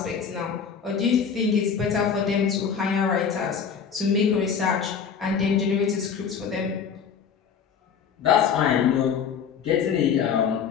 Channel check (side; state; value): right; quieter; 6.9 dB